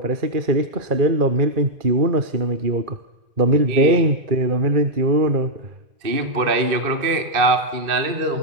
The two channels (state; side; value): late; left; 2.5 ms